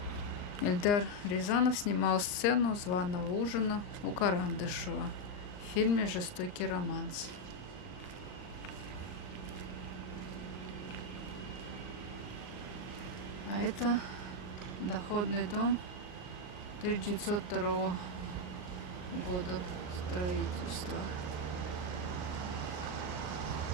Эльдар Рязанов снимал сцену званого ужина у Карандышева в фильме «Жестокий романс». А это доходный дом 1902 года строительства.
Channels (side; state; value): right; late; 39 ms